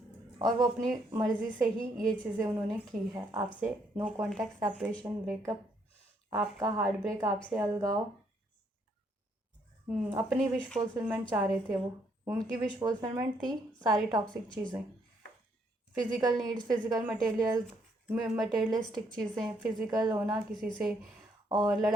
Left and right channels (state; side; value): normal; both; correlation 0.71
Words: और वो अपनी मर्ज़ी से ही ये चीज़ें उन्होंने की है आपसे, नो कॉन्टैक्ट, सेपरेशन, ब्रेकअप, आपका हार्ट ब्रेक, आपसे अलगाव, अपनी विश फुलफिलमेंट चाह रहे थे वो, उनकी विश फुलफिलमेंट थी सारी टॉक्सिक चीज़ें, फिज़िकल नीड्स, फिज़िकल मटेरियलिस्टिक चीज़ें, फिज़िकल होना किसी से, और